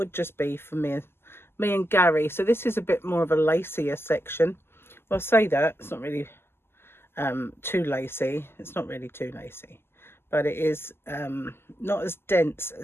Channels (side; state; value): right; late; 0.12 ms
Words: just be for me and Gary. So this is a bit more of a lacier section. Well, I say that, it's not really too lacy. It's not really too lacy, but it is not as dense